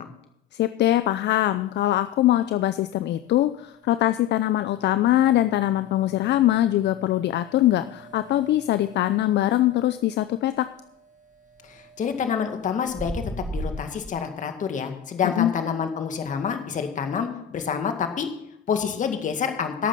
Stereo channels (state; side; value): quieter; right; 11.1 dB